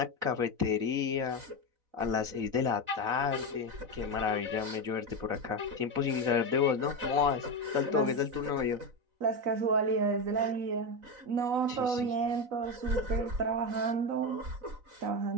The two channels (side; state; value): left; late; 4.0 ms